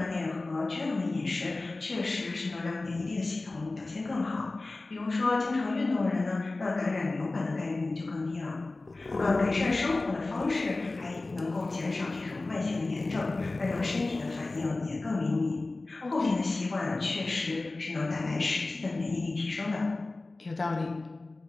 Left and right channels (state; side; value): quieter; right; 3.2 dB